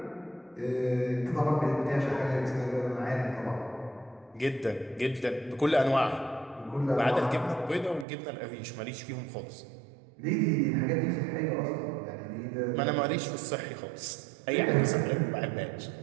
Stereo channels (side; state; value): left; drops out; at 8.1 s